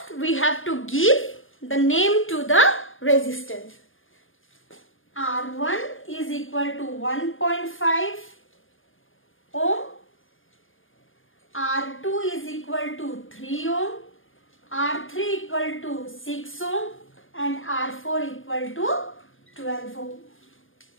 we have to give the name to the resistance. R1 is equal to 1.5 ohm. R2 is equal to 3 ohm. R3 equal to 6 ohm. And R4 equal to 12 ohm.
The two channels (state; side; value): late; right; 0.59 ms